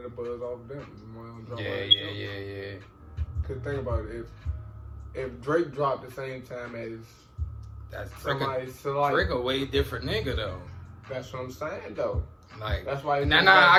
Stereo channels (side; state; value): both; identical; correlation 1.00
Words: the buzz off them. Yeah. Cause think about it, if Drake dropped the same time as Drake a way different nigga though. That's what I'm saying though. Like, that's why.